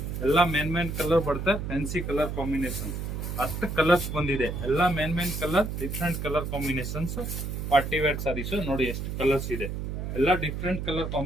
ಎಲ್ಲ ಮೇನ್ ಕಲರ್ ಬರುತ್ತೆ. ಫ್ಯಾನ್ಸಿ ಕಲರ್ ಕಾಂಬಿನೇಷನ್ 10 ಕಲರ್ಸ್ ಬಂದಿದೆ. ಎಲ್ಲ main colour, different colour combinations. Party wear saris ನೋಡಿ, ಎಷ್ಟು ಕಲರ್ಸ್ ಇದೆ. ಎಲ್ಲ ಡಿಫ್ರೆಂಟ್ ಕಲರ್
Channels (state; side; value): noise; right; hum, 4 dB below the sound